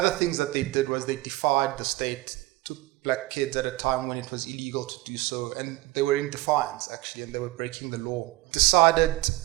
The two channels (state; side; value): quieter; left; 19.2 dB